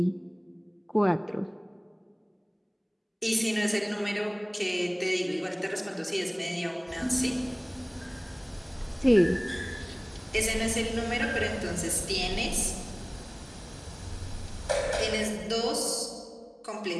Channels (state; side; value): identical; both; correlation 1.00